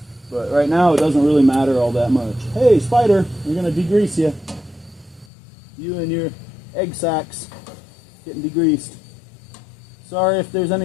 But right now it doesn't really matter all that much. Hey, Spider, we're going to degrease you. You and your egg sacs getting degreased. Sorry if there's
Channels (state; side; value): drops out; right; at 5.2 s